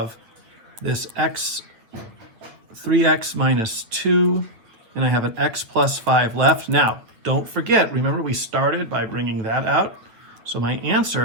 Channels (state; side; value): late; left; 9.1 ms